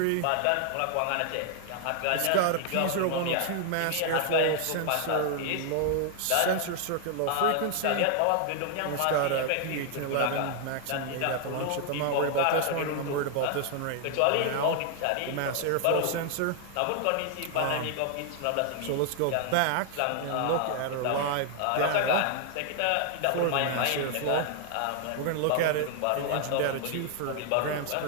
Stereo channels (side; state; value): both; different; correlation 0.00